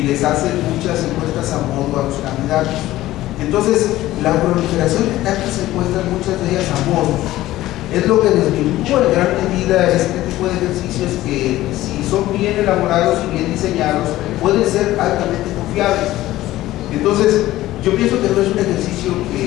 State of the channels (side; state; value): right; quieter; 15.7 dB